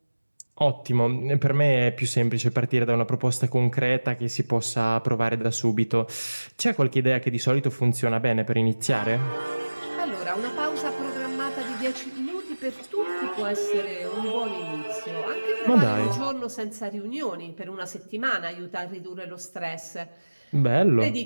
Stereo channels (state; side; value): inverted; both; correlation -1.00